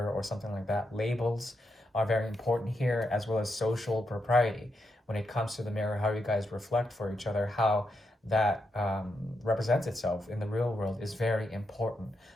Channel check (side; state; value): both; normal; correlation 0.83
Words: or something like that. Labels are very important here, as well as social propriety when it comes to the mirror, how you guys reflect for each other, how that represents itself in the real world is very important